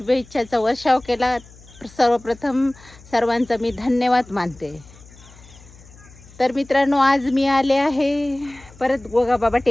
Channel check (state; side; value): noise; left; hum, 23 dB below the sound